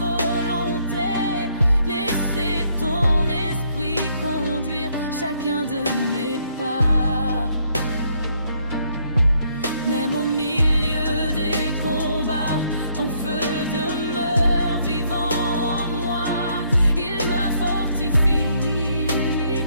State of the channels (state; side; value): inverted; both; correlation -0.70